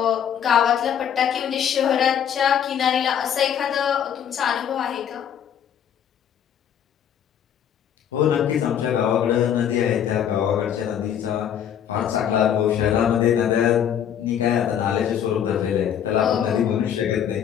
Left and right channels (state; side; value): quieter; right; 9.1 dB